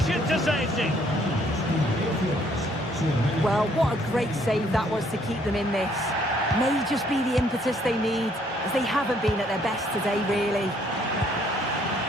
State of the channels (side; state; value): both; normal; correlation 0.65